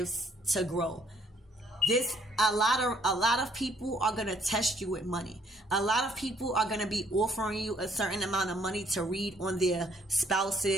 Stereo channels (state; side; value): normal; both; correlation 0.65